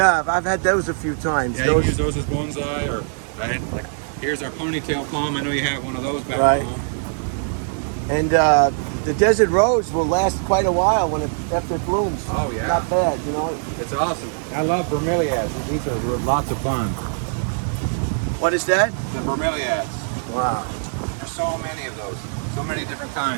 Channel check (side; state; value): left; silent; 60 dB below the other